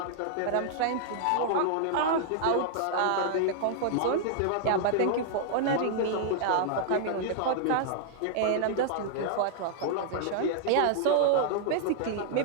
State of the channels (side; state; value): both; different; correlation -0.01